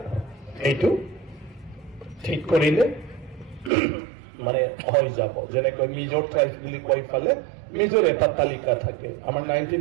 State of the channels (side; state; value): left; drops out; at 3.7 s